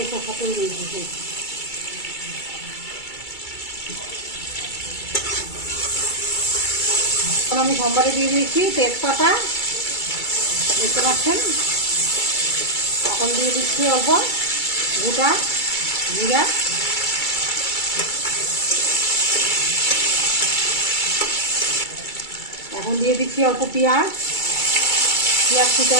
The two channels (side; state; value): right; late; 2.3 ms